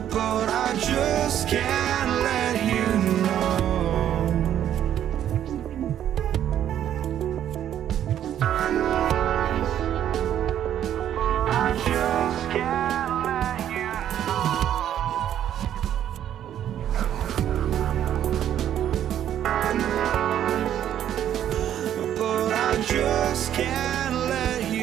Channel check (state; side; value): quieter; left; 10.6 dB